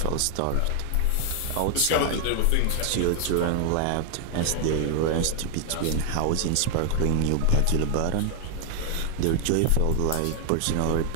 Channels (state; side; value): different; both; correlation 0.00